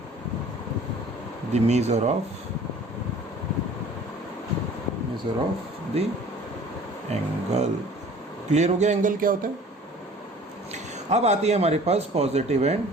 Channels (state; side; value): normal; both; correlation 0.48